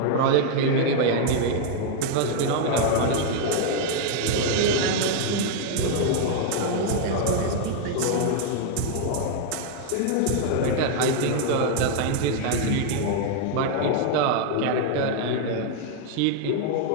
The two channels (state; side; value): different; both; correlation 0.00